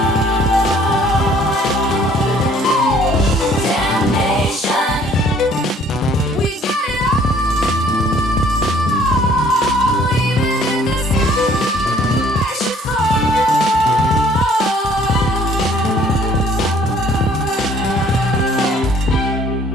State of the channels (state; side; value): normal; both; correlation 0.58